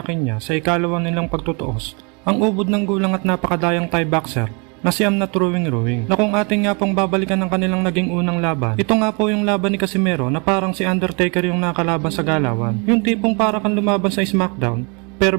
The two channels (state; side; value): quieter; left; 33.3 dB